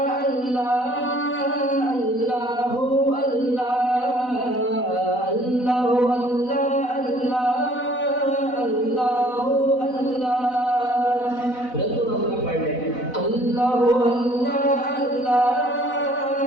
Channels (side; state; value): right; late; 4.0 ms